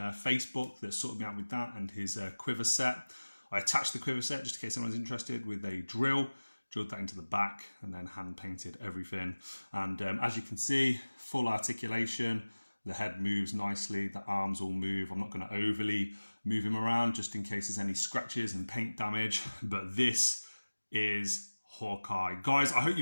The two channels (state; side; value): inverted; both; correlation -1.00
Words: that sorted me out with that, and his quiver set. I attached the quiver set just in case anyone's interested with a drilled that into the back, and then hand painted everything. And as you can see, full articulation. The head moves nicely, the arms all move. I'm not going to overly move him around just in case there's any scratches and paint damage, but this is Hawkeye. Guys, I hope